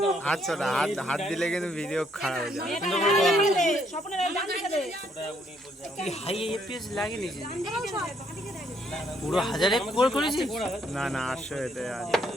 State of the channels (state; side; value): normal; both; correlation 0.70